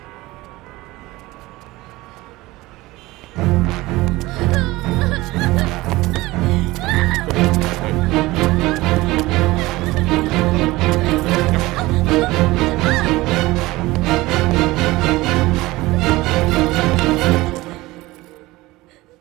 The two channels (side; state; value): left; quieter; 19.6 dB